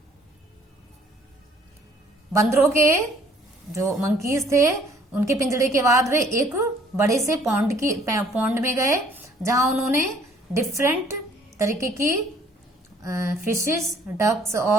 बंदरों के जो monkeys थे उनके पिंजड़े के बाद वे एक बड़े से पॉन्ड में गए जहां उन्होंने डिफरेंट तरीके की फिशेस, डक्स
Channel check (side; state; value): both; normal; correlation 0.59